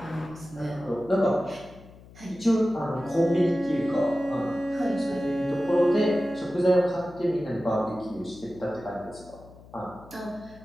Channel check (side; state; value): left; noise; hum, 21 dB below the sound